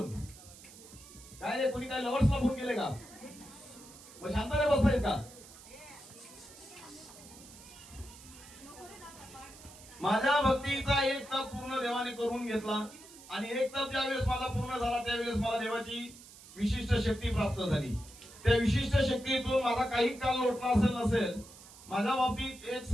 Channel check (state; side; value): noise; right; hiss, 19 dB below the sound